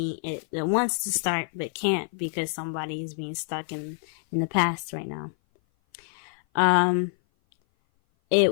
wants to start but can't because somebody is being stuck in the past right now.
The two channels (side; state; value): right; silent; 57 dB below the other